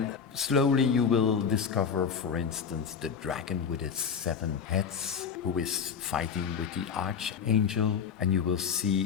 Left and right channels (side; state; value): right; quieter; 6.7 dB